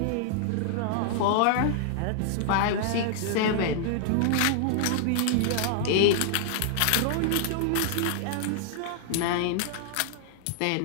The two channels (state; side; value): different; both; correlation 0.00